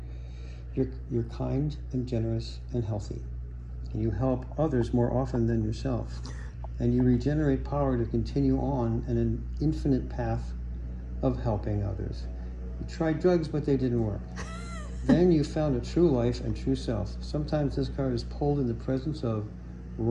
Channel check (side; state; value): both; identical; correlation 1.00